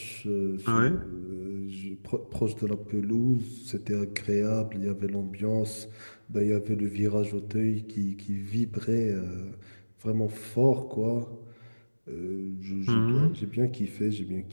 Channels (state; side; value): inverted; both; correlation -1.00